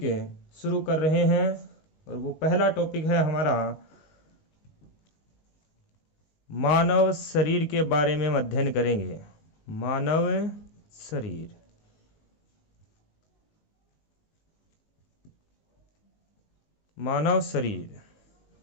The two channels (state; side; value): late; right; 19 ms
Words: शुरू कर रहे हैं और वो पहला टॉपिक है हमारा मानव शरीर के बारे में हम अध्ययन करेंगे। मानव शरीर। मानव शरीर।